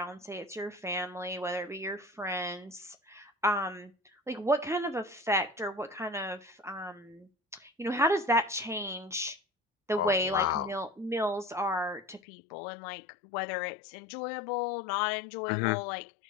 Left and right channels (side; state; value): right; drops out; at 12.2 s